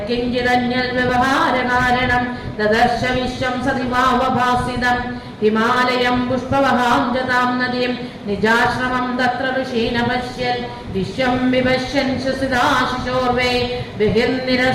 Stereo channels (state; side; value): identical; both; correlation 1.00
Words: ददर्श विश्वं सदिवावभासितं हिमालयं पुष्पवहां जतां नदीं निजाश्रमं तत्र ऋषीन् पश्यन् विश्वं विपश्यन् श्वसिताशिशोर्वे